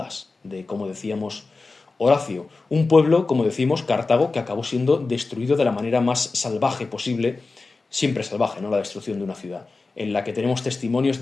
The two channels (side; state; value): right; quieter; 3.8 dB